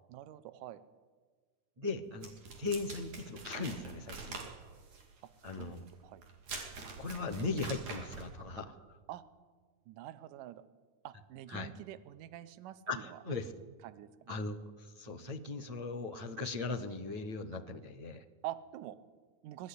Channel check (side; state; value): left; late; 9.8 ms